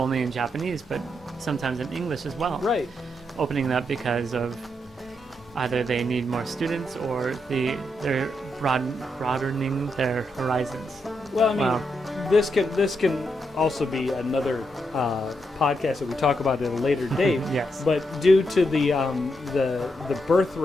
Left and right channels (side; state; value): both; normal; correlation 0.81